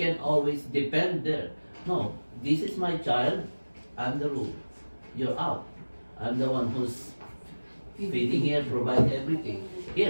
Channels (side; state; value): both; inverted; correlation -1.00